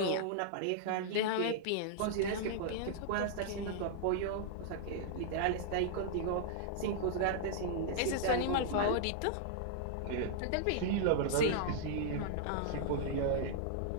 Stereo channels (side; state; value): both; different; correlation -0.01